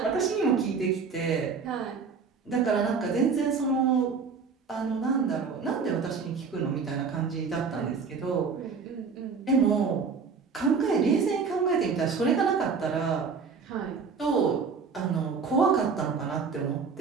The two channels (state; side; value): quieter; left; 5.4 dB